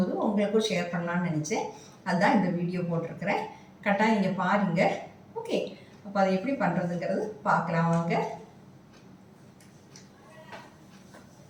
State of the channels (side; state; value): both; identical; correlation 1.00